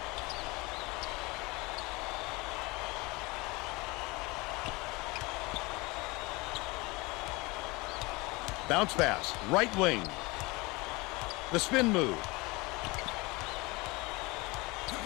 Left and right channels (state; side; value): quieter; right; 24.3 dB